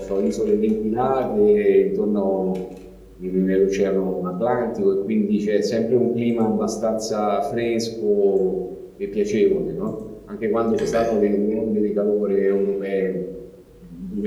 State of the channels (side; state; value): both; identical; correlation 1.00